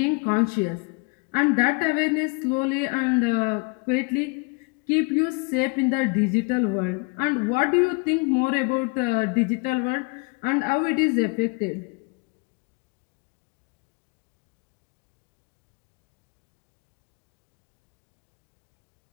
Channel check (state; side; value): quieter; right; 31.2 dB